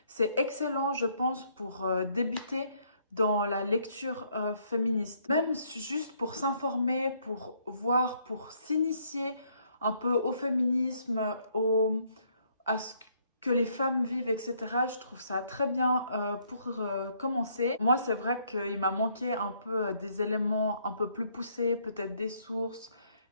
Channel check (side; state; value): both; inverted; correlation -0.69